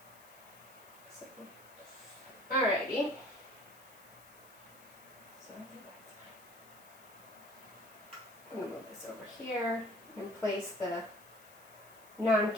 So, alrighty. So I think that's fine. I'm gonna move this over here and place the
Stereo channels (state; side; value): noise; left; hiss, 23 dB below the sound